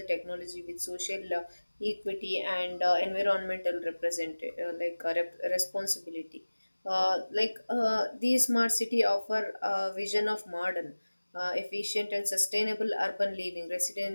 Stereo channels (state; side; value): inverted; both; correlation -1.00